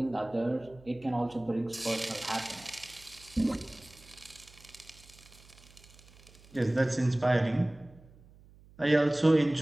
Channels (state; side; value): noise; right; hum, 24 dB below the sound